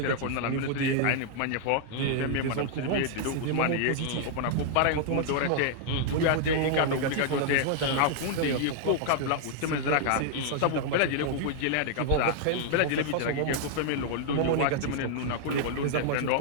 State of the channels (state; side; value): different; both; correlation -0.01